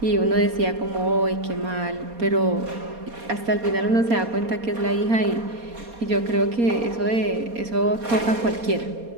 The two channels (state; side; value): late; left; 4.2 ms